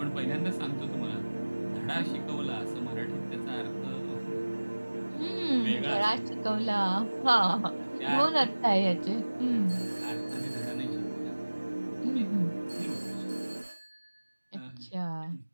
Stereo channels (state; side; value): inverted; both; correlation -1.00